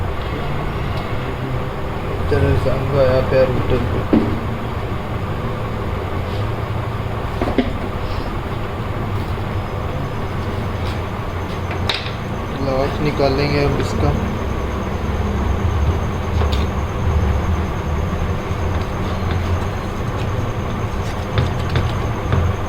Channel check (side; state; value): both; identical; correlation 1.00